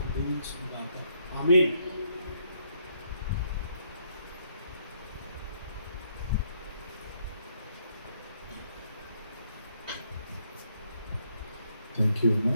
దీవించుకుందాక. ఆమేన్. థ్యాంక్ యూ అన్న.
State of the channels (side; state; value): both; inverted; correlation -0.73